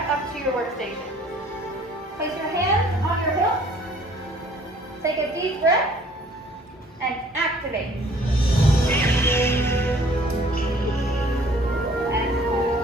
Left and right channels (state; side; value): normal; both; correlation 0.56